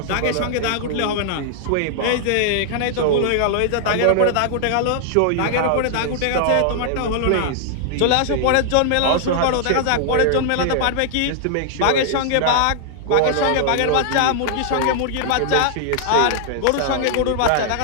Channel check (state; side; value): different; both; correlation -0.01